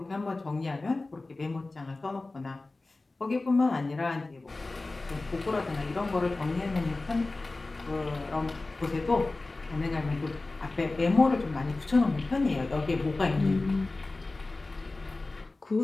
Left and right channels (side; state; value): right; quieter; 3.2 dB